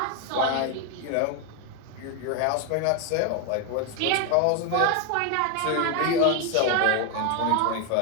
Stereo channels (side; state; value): both; different; correlation 0.01